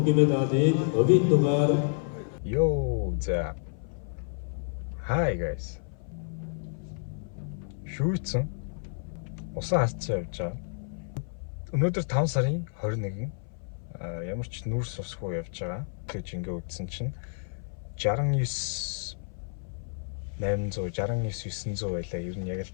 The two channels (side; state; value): right; silent; 57 dB below the other